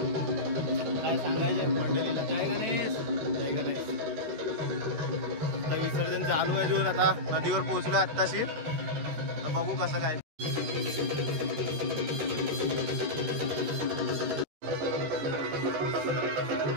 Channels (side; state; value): left; late; 13 ms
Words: काय सांगायचं मंडळीला? जय गणेश. जय गणेश. आता विसर्जन चालू आहे. अजून आता नदीवर पोहोचलोय आत्ताशी. तर बघू कसं काय.